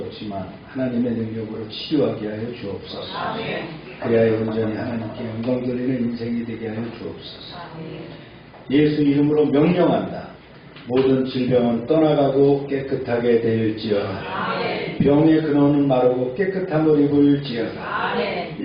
하나님의 능력으로 치유하게 하여 주옵소서. 그리하여 온전히 하나님께 영광 돌리는 인생이 되게 하여 주옵소서. 예수 이름으로 명령한다. 모든 질병은 떠나가고 깨끗하게 되일지어다. 병의 근원은 마르고 깨끗함을 입을지어다.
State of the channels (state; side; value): identical; both; correlation 1.00